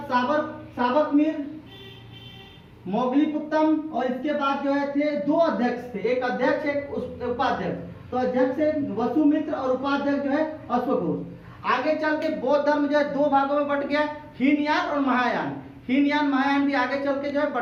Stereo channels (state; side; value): identical; both; correlation 1.00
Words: साबकमीर, मोगलीपुत्तम, और इसके बाद जो है थे 2 अध्यक्ष थे, एक अध्यक्ष एक उपाध्यक्ष। तो अध्यक्ष है वसुमित्र और उपाध्यक्ष जो है अश्वघोष। आगे चल के बौद्ध धर्म जो है 2 भागों में बट गया, हीनयान और महायान। हीनयान महायान भी आगे चल के जो है